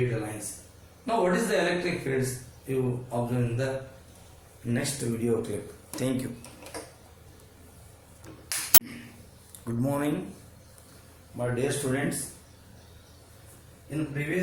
lines. Now, what is the electric fields? You observe in the next video clip. Thank you. Good morning, my dear students. In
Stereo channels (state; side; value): identical; both; correlation 1.00